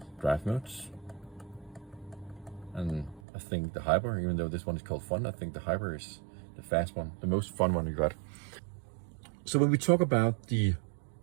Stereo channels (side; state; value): left; drops out; at 3.2 s